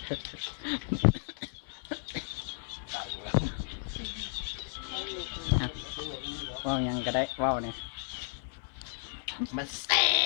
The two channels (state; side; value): silent; right; 56 dB below the other